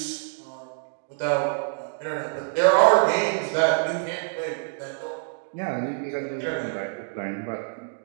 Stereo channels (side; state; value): left; silent; digital silence